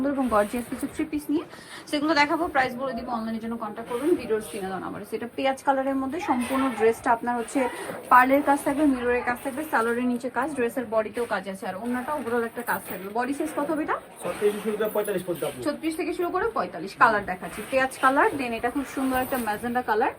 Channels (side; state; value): both; identical; correlation 1.00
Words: এবং গর্জিয়াস কিছু থ্রি পিস নিয়ে, সেগুলো দেখাবো। প্রাইস বলে দিব, অনলাইনের জন্য কন্ট্যাক্ট করবেন ভিডিওর স্ক্রিনে দেওয়া নাম্বারে। সেটা পেঁয়াজ কালারের মধ্যে সম্পূর্ণ ড্রেসটা আপনার হচ্ছে পার্লের কাজ থাকবে, মিররের কাজ থাকবে, সালোয়ারের নিচে কাজ, ড্রেসের বডিতেও কাজ আছে, আর অন্যটা ওভারঅল একটা কাজ থাকবে। বডি সাইজ কত হবে এটা? 36 থেকে শুরু করে 45। কালার দেখাচ্ছি পেঁয়াজ কালার, দেন এটা খুব সুন্দর একটা ম্যাজেন্ডা কালার।